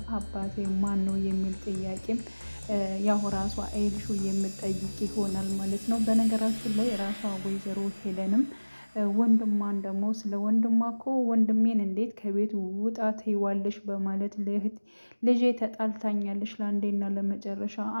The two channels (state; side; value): inverted; both; correlation -1.00